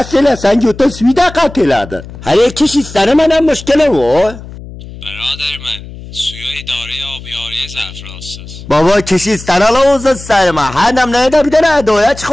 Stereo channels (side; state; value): left; noise; hum, 14 dB below the sound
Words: sen yuta svida kateladı. Her kişi sana bana müşkile var. Beraber mən suya idarə abiyariyə zərf rastsız. Baba kişi sana la olsun sarma. Hanım neyde bir tane adaya